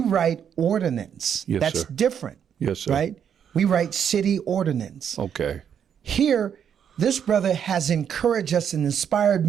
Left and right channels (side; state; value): left; quieter; 8.3 dB